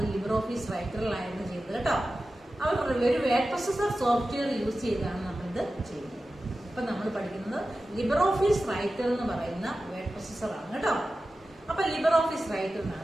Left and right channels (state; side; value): normal; both; correlation 0.94